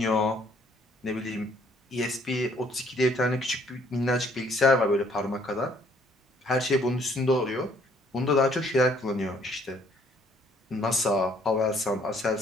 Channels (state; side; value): normal; both; correlation 0.63